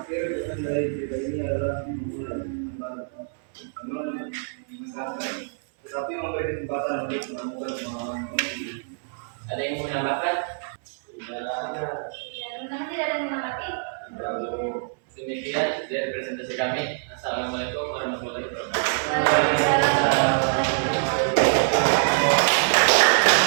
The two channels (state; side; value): silent; left; digital silence